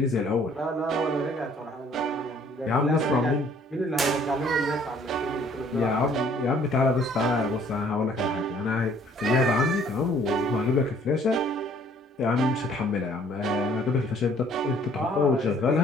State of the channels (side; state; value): both; normal; correlation 0.59